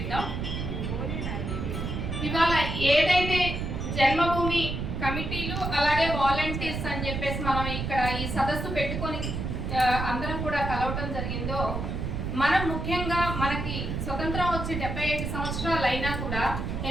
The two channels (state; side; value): noise; right; rumble, 3 dB below the sound